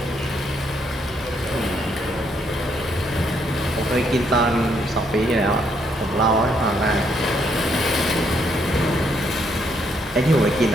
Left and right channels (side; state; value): both; normal; correlation 0.72